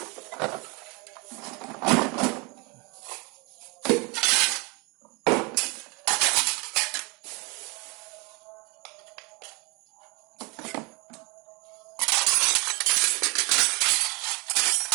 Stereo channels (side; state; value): left; quieter; 29.3 dB